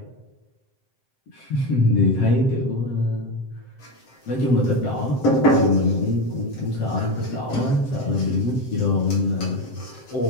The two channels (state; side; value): late; right; 7.7 ms